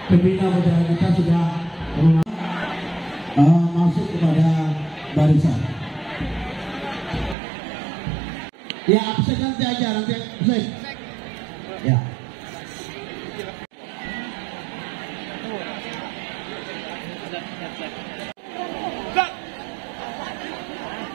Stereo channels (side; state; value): left; drops out; at 7.4 s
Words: pembina budaya kita sudah masuk kepada barisan. Ya, absen nanti aja, nanti absen. Ya.